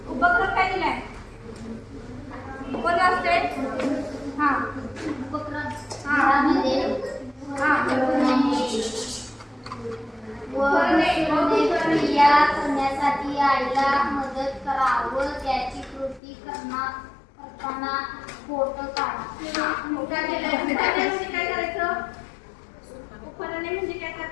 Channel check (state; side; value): drops out; right; at 16.2 s